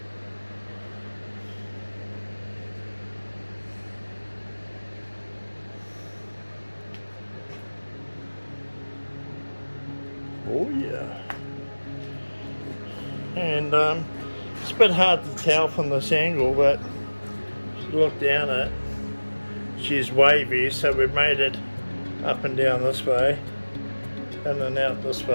Oh yeah. And it's a bit hard to tell from this angle, but look down it. She's wavy, so we've made it up and down this way, in and out this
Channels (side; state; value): both; inverted; correlation -1.00